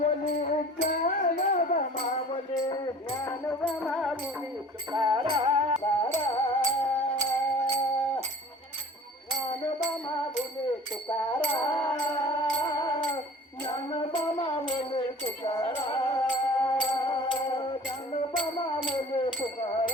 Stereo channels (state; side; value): normal; both; correlation 0.45